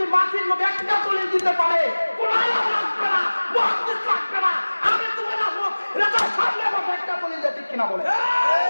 মাটির নবী একটা দলিল দিতে পারে, কোন আলেম লাগবে না, মুহাদ্দিস লাগবে না, আমি তোমার আহমদ রেজা সামনে বসে একটা দলিল দিয়ে, ঠিক কিনা বলে?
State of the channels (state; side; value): inverted; both; correlation -1.00